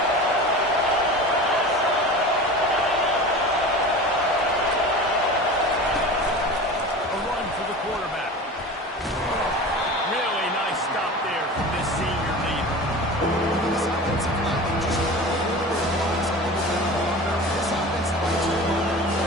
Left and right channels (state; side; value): normal; both; correlation 0.34